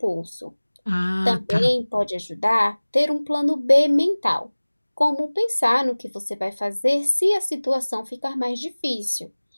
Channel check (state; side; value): inverted; both; correlation -1.00